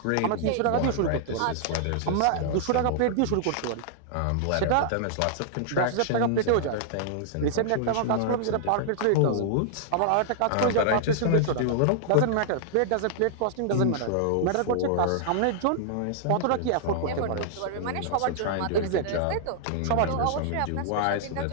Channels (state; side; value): different; both; correlation -0.01